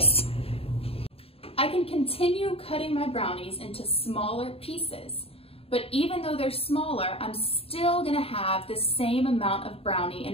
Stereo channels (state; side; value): late; right; 0.28 ms